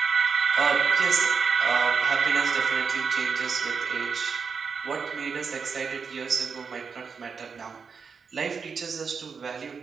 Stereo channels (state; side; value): quieter; left; 5.7 dB